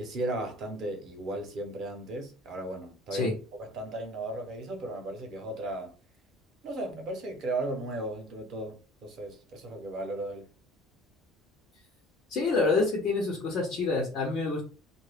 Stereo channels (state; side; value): normal; both; correlation 0.47